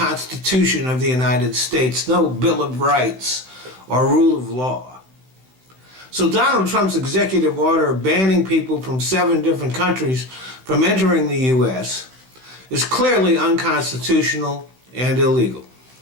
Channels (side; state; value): left; late; 16 ms